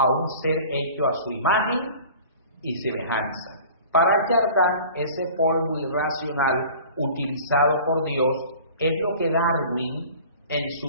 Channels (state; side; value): inverted; both; correlation -0.44